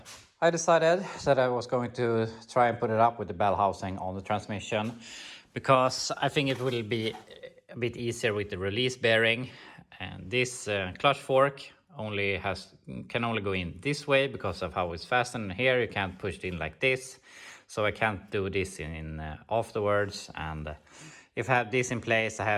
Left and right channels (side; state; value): both; identical; correlation 1.00